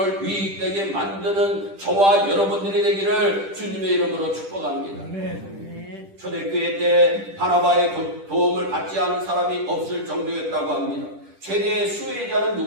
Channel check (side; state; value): left; late; 10 ms